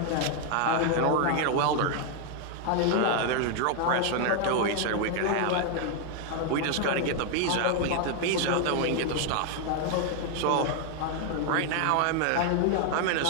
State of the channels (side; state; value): both; different; correlation 0.00